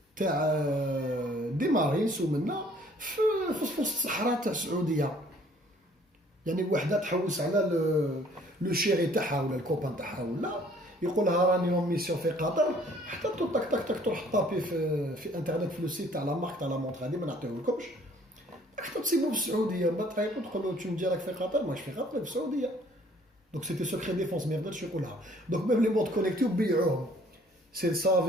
تاع دي مارينس ومنا في وسط الصحراء تاع السعوديه. يعني وحده تحوس على لو شيري تاعها ولا الكوبان تاعها ولا يقول لها راني اون ميسيون في قطر، حتى تك تك تك تروح طابي في انترنت في لو سيت تاع لا مارك تاع لا مونتر هذه ما نعطيوهلكمش، حتى تصيبوا في السعوديه ما تعيطوا تقولوا تشوف ديالك في قطر ماش في قطر في السعوديه. دونك سيتي سوكري ديفونس ما يقدرش يقولها. دونك ميم لي مونت كونيكتيو بيعوهم سي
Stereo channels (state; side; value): normal; both; correlation 0.58